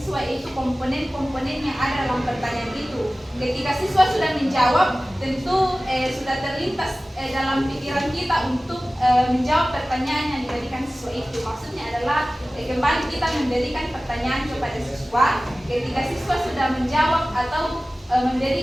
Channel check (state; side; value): normal; both; correlation 0.97